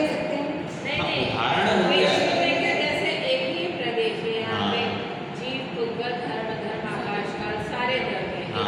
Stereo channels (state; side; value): identical; both; correlation 1.00